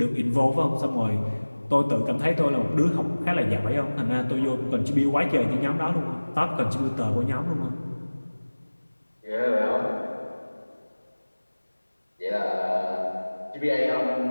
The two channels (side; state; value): both; inverted; correlation -1.00